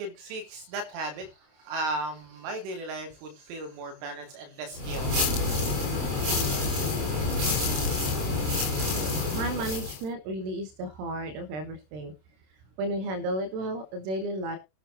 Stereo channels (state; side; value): late; left; 26 ms